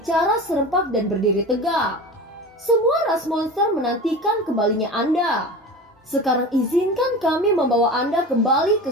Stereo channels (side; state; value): both; normal; correlation 0.32